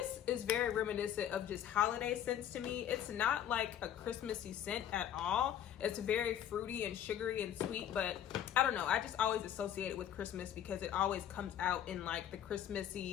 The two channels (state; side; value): quieter; right; 10.2 dB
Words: very reminiscent of just holiday scents to me. It's not like a Christmassy scent at all. It's very fruity and sugary and sweet, but I don't know. I just always associate it with Christmas because it always comes out in like the